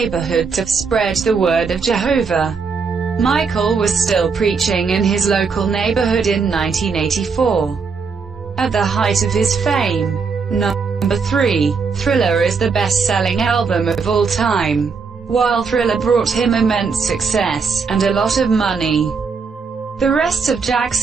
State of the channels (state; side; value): quieter; left; 5.3 dB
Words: to spread the word of Jehovah. Michael was still preaching in his local neighborhood in 1984. At the height of his fame. Number 3. Thriller is the best-selling album of all time. While Thriller brought him immense success, and a lot of money, the rest of